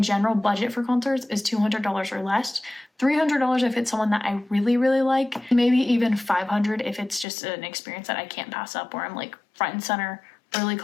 budget for concerts is $200 or less, $300 if it's someone that I really, really like, maybe even $500 if it's just an experience that I can't pass up where I'm like front and center, really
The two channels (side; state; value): right; drops out; at 7.2 s